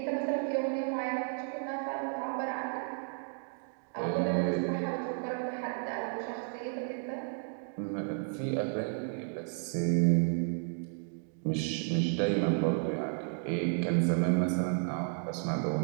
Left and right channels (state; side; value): silent; left; 56 dB below the other